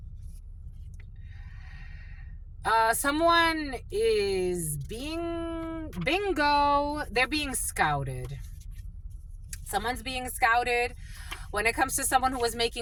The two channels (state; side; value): identical; both; correlation 1.00